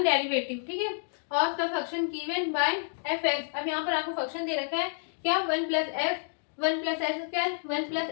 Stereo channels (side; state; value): right; silent; digital silence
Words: ठीक है, of the function given by F x. अब यहाँ पर आपको फंक्शन दे रखा है क्या? 1 plus x 1 plus x square 1 plus